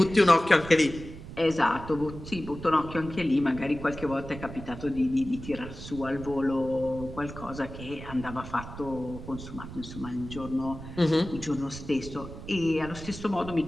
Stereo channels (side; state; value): right; noise; rumble, 12 dB below the sound